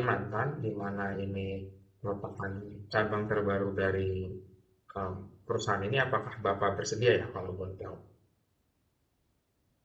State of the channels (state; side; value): identical; both; correlation 1.00